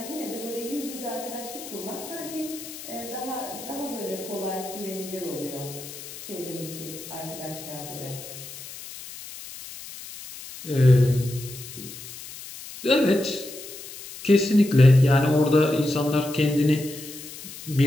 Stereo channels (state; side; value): noise; left; hiss, 13 dB below the sound